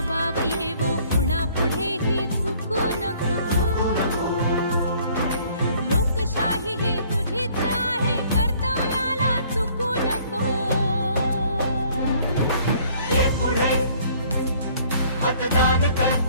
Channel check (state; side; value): inverted; both; correlation -0.58